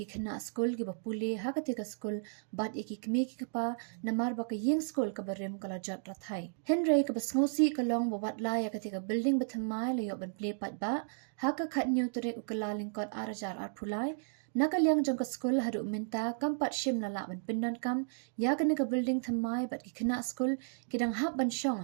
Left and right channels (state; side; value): silent; left; digital silence